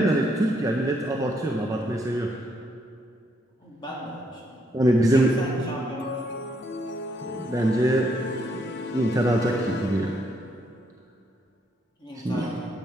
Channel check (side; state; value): both; normal; correlation 0.74